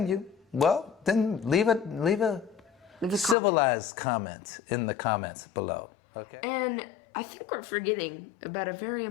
you, well, then leave a civilized comment in the comments below. Okay. And I think we're forgetting about a very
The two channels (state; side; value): drops out; right; at 3.4 s